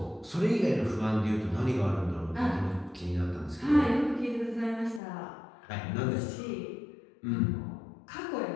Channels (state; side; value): drops out; right; at 5.0 s